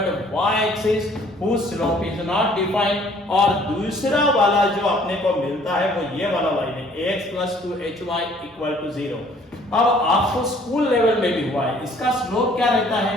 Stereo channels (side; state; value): both; normal; correlation 0.58